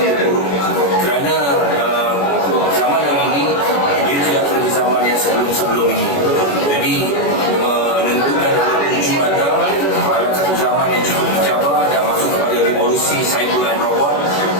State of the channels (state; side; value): late; right; 21 ms